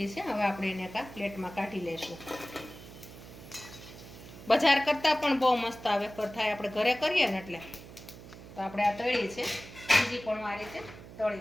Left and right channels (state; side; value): noise; right; hum, 16 dB below the sound